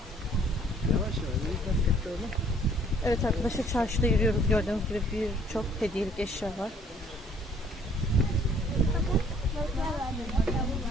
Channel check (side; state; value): both; normal; correlation 0.59